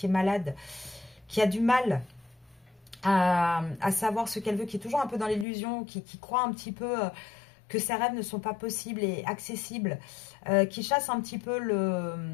est malade, qui a du mal à savoir ce qu'elle veut, qui est toujours un peu dans l'illusion, qui croit un petit peu que ses rêves ne sont pas possibles et accessibles, qui chasse un petit peu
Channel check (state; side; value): drops out; right; at 5.5 s